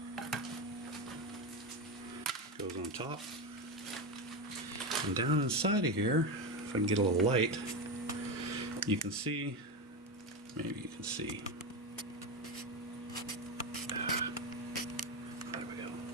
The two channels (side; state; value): both; normal; correlation 0.15